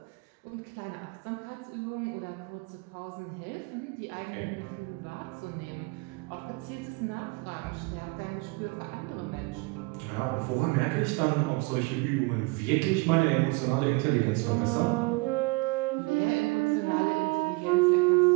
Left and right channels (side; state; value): left; quieter; 26.3 dB